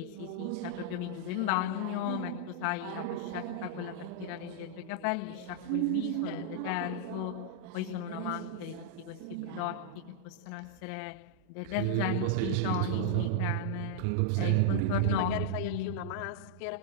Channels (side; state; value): both; different; correlation -0.01